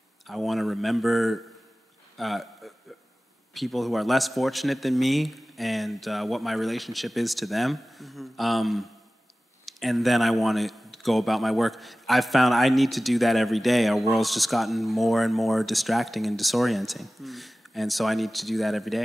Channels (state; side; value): normal; both; correlation 0.97